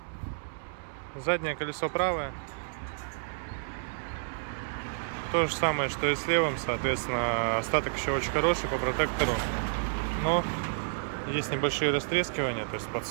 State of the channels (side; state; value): left; silent; 58 dB below the other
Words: Заднее колесо правое. То же самое, что и с левым, соответственно, остаток еще очень хороший по протектору. Но есть небольшие растрескивания, то есть